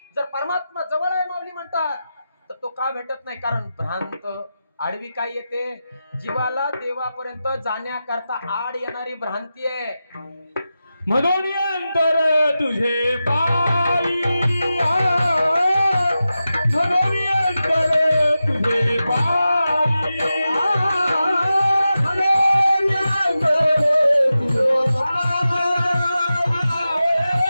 जर परमात्मा जवळ आहे माऊली म्हणतात, तर तो का भेटत नाही? कारण भ्रांत, आडवी काय येते? जीवाला देवापर्यंत जाण्याकरता आड येणारी भ्रांती आहे. म्हणून अंतर तुझे पायी, म्हणून अंतर तुझे पायी, म्हणून अंतर तुझे पायी,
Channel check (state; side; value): inverted; both; correlation -0.92